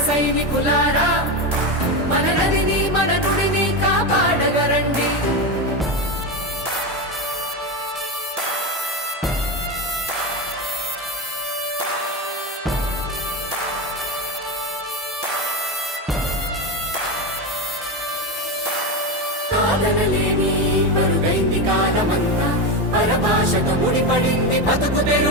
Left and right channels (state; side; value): normal; both; correlation 0.16